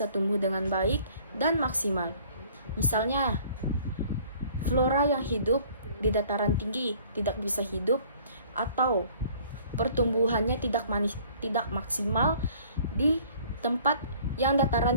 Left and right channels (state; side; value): inverted; both; correlation -0.54